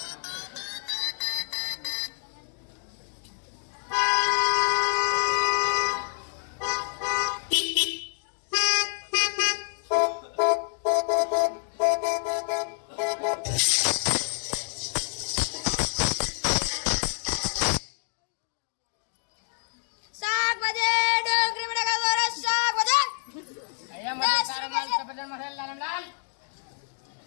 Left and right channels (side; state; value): right; silent; digital silence